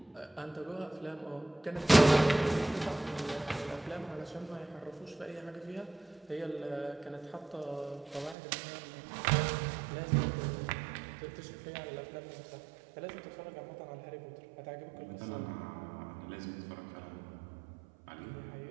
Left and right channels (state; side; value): drops out; left; at 8.3 s